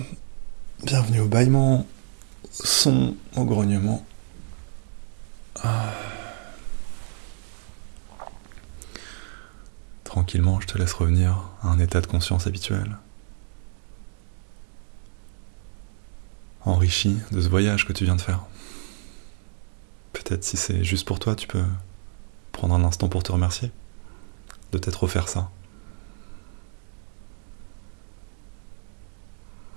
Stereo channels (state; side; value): silent; left; digital silence